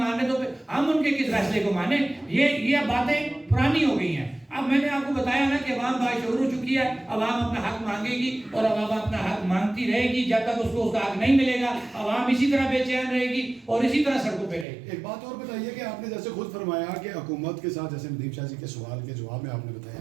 رہے تو پھر ہم ان کے کس فیصلے کو مانیں؟ یہ باتیں پرانی ہو گئی ہیں. اب میں نے آپ کو بتایا نا کہ عوام باشعور ہو چکی ہے. عوام اپنا حق مانگے گی اور عوام اپنا حق مانگتی رہے گی جب تک اس کو اس کا حق نہیں ملے گا. عوام اسی طرح بے چین رہے گی اور اسی طرح سڑکوں پہ رہے گی. ایک بات اور بتائیے کہ آپ نے جیسے خود فرمایا کہ حکومت کے ساتھ، جیسے ندیم شاہ جی کے سوال کے جواب میں آپ نے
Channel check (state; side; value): drops out; left; at 14.7 s